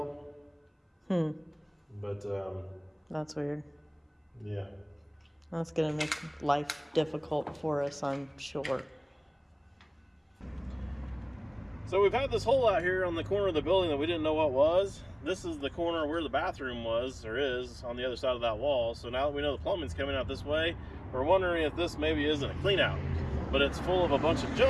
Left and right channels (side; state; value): both; identical; correlation 1.00